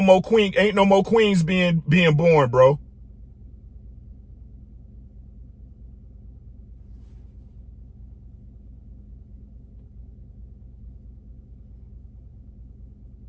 queens being born, bro.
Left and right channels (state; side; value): identical; both; correlation 1.00